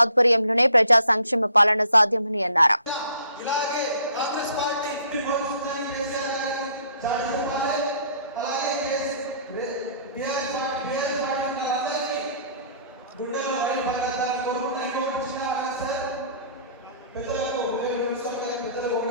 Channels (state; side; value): inverted; both; correlation -0.57